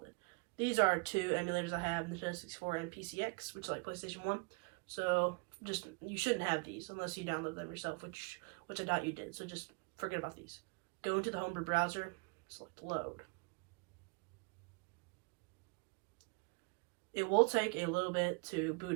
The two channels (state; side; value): quieter; left; 33.1 dB